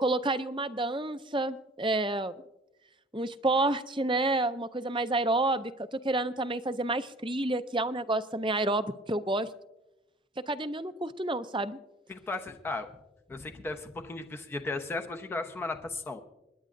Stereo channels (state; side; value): normal; both; correlation 0.49